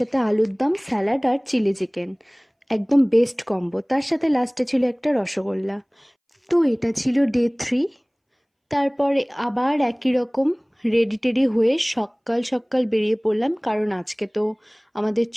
আলুর দম, স্যালাড আর চিলি চিকেন, একদম বেস্ট কম্বো। তার সাথে লাস্টে ছিল একটা রসগোল্লা। তো এটা ছিল ডে 3। তারপরে আবার একই রকম রেডি টেডি হয়ে সকাল সকাল বেরিয়ে পড়লাম, কারণ আজকে তো আমাদের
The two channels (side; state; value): both; identical; correlation 1.00